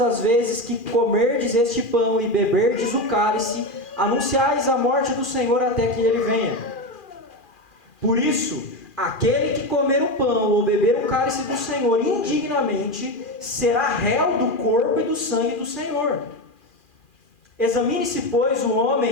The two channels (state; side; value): late; right; 2.4 ms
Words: vezes que comerdes este pão e beberdes o cálice, anunciais a morte do Senhor até que ele venha. Por isso, aquele que comer o pão ou beber o cálice do Senhor indignamente, será réu do corpo e do sangue do Senhor. Examine-se, pois, o